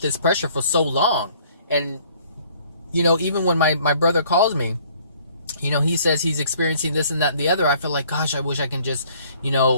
pressure for so long. And, even when my brother calls me, he says he's experiencing this and that and the other, I feel like, gosh, I wish I can just,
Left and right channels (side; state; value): both; inverted; correlation -0.59